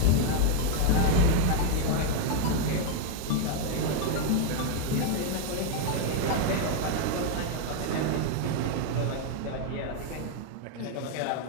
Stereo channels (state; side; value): different; both; correlation 0.00